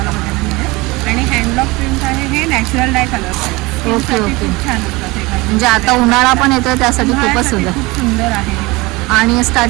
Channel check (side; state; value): left; quieter; 23.1 dB